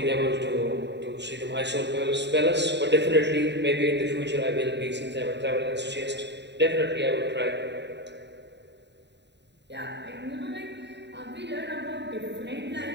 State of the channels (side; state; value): left; late; 0.50 ms